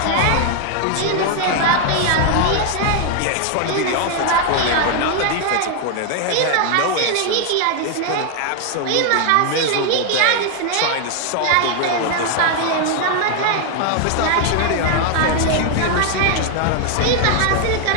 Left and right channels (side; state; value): both; different; correlation 0.00